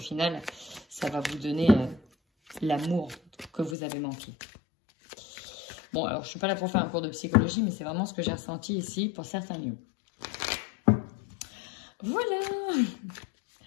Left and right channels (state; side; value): drops out; right; at 3.8 s